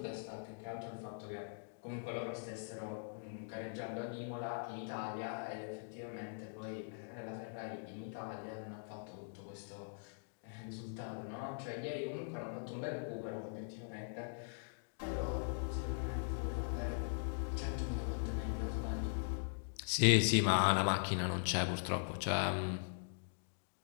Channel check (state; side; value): silent; right; digital silence